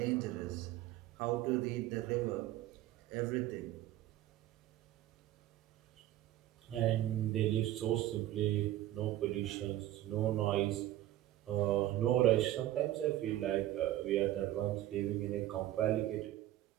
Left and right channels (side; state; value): left; quieter; 14.3 dB